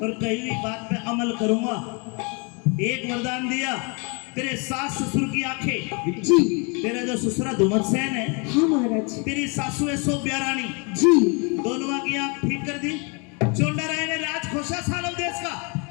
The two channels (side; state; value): right; quieter; 32.6 dB